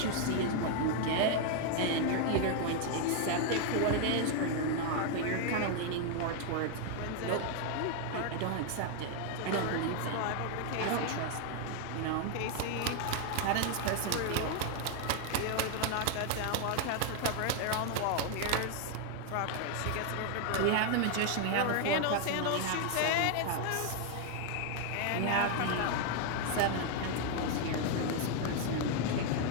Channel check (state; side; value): different; both; correlation 0.00